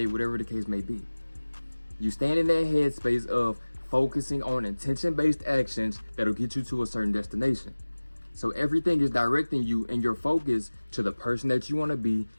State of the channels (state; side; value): inverted; both; correlation -1.00